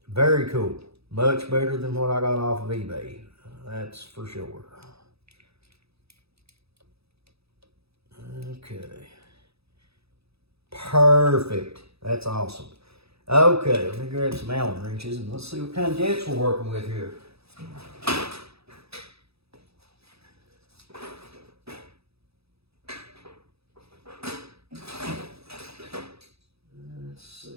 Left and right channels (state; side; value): late; left; 0.78 ms